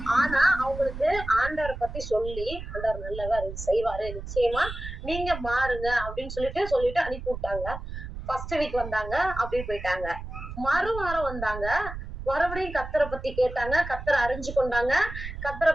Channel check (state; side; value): noise; right; rumble, 9 dB below the sound